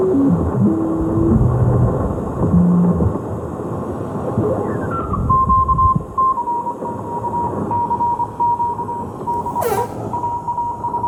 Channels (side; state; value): both; identical; correlation 1.00